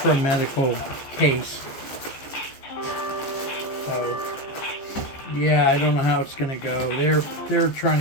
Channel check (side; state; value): right; late; 14 ms